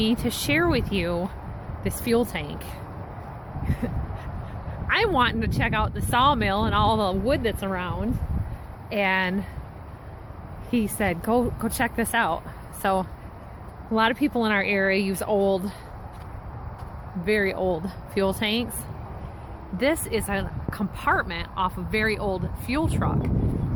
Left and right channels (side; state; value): both; identical; correlation 1.00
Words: to share with you this fuel tank. I'm wanting to check out the sawmill and all the wood that's around, and he said go check this out. So a lot of people in our area use old, very old fuel tanks. This is a compartment off a very old fuel truck.